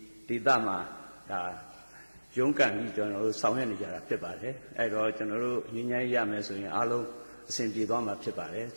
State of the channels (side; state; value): both; inverted; correlation -1.00